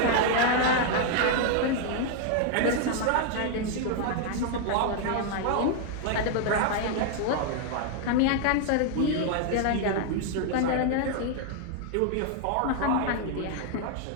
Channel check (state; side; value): different; both; correlation 0.00